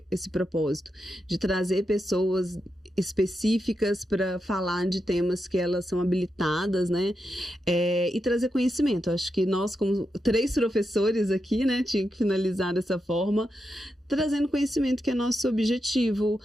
esse propósito de trazer pessoas específicas para falar de temas que elas são habilitadas, né? E trazer conhecimento. Acho que nós, como 3 professores aqui, né, tinha que finalizar dessa forma, trazendo conhecimento, que é nosso objetivo,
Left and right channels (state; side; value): normal; both; correlation 0.86